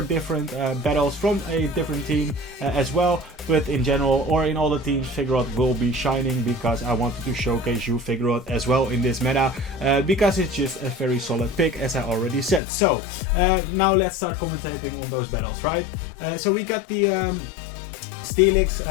different battles from a different team as well. But in general, or in all the teams, Vigoroth will be shining, because I wanted to showcase you Vigoroth as well in this meta, because it's just a very solid pick, as I already said. So now let's start commentating on those battles, right? So we got the Steelix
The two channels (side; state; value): right; drops out; at 12.6 s